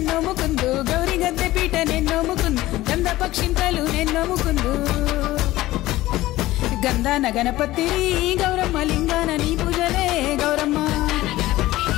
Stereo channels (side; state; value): right; quieter; 16.8 dB